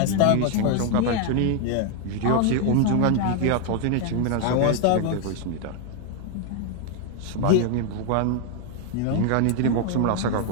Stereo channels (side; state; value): both; different; correlation 0.00